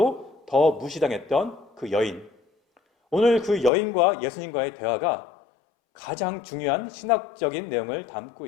더 무시당했던 그 여인. 오늘 그 여인과 예수님과의 대화가 가장 중요한 신학적인 내용을 담고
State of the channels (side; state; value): right; drops out; at 3.7 s